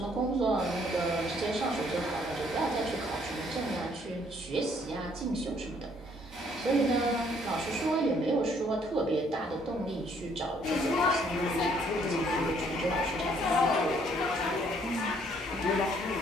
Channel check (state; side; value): normal; both; correlation 0.65